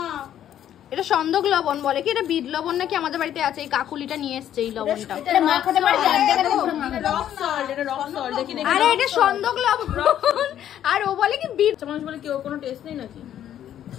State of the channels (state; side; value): quieter; right; 10.8 dB